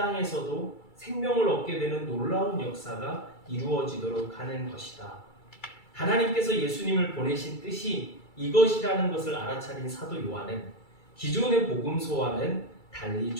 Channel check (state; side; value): late; right; 2.3 ms